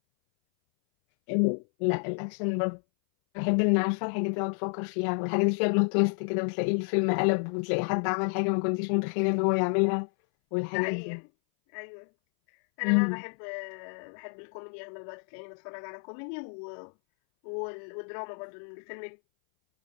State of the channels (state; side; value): silent; right; 58 dB below the other